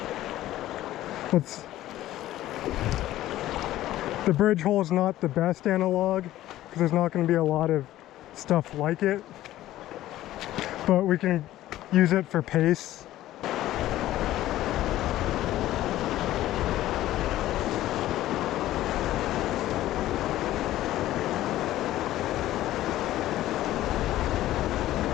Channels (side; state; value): right; quieter; 14.5 dB